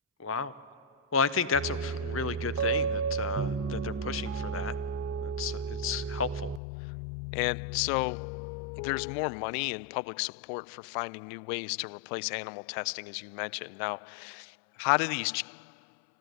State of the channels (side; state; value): right; drops out; at 6.6 s